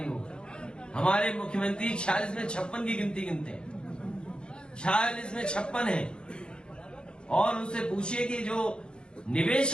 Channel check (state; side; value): late; right; 0.051 ms